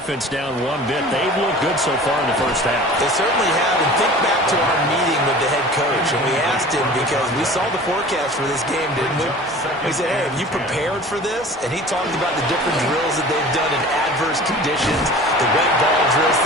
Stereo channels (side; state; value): both; normal; correlation 0.42